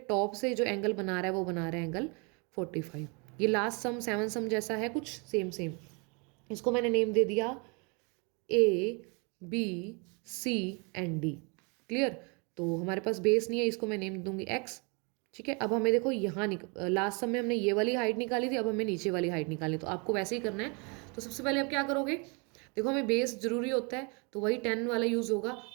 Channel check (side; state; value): left; quieter; 32.4 dB